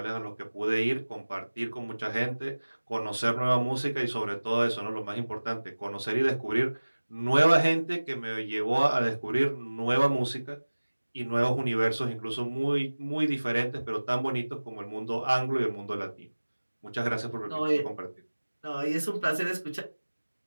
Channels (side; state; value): both; inverted; correlation -1.00